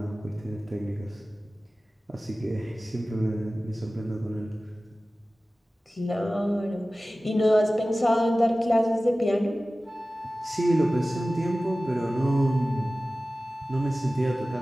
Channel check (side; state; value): both; normal; correlation 0.96